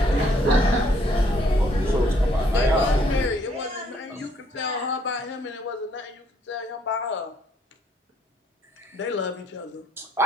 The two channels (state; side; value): normal; both; correlation 0.67